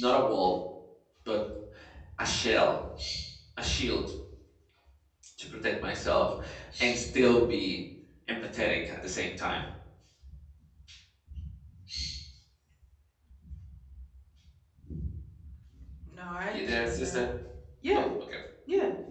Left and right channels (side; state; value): both; identical; correlation 1.00